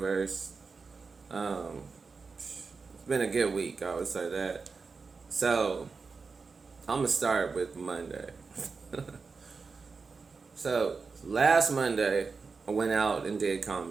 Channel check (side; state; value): left; quieter; 4.7 dB